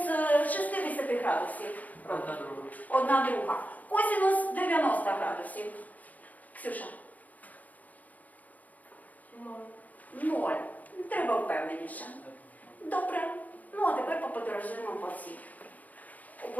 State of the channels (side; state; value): right; late; 0.078 ms